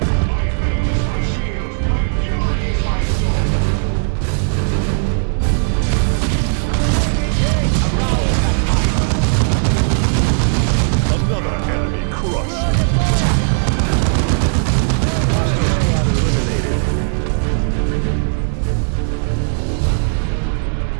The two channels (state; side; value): silent; left; 66 dB below the other